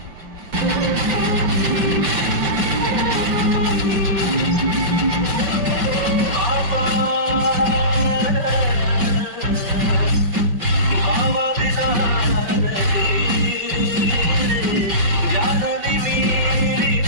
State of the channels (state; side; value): late; left; 5.2 ms